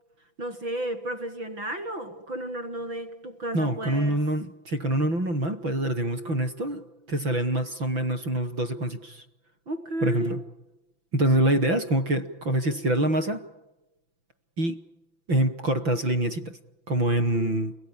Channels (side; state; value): left; late; 6.0 ms